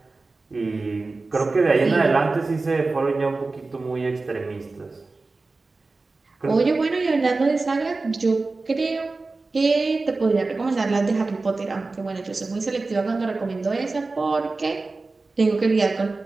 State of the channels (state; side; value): quieter; left; 3.6 dB